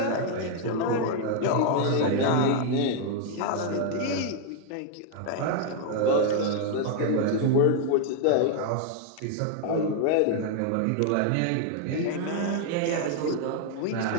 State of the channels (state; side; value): different; both; correlation 0.00